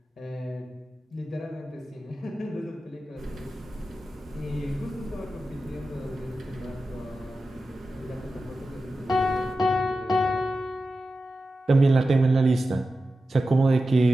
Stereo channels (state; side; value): normal; both; correlation 0.93